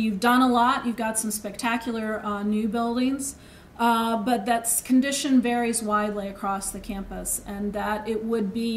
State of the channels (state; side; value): identical; both; correlation 1.00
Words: done a lot. You've got some spectacular new buildings. but that condition varies widely across the campus, and that it would